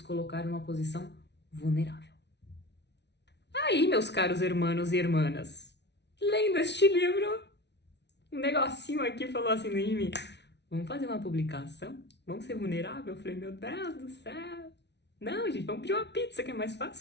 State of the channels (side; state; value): right; late; 0.50 ms